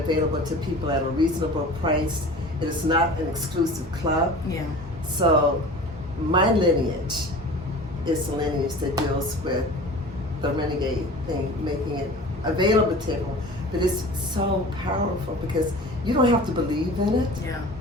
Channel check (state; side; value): normal; both; correlation 0.39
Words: to people at a reasonable price. It is not an exclusive club. Yeah. So my lineage is a lineage that deals with the Renegade thing, making it available to everyone. But it's so powerful because you don't have to believe in it.